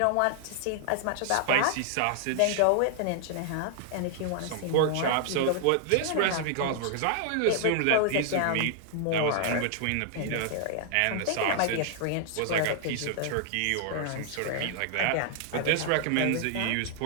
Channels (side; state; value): both; different; correlation 0.00